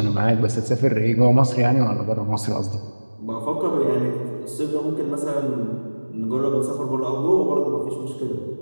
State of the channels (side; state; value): both; inverted; correlation -1.00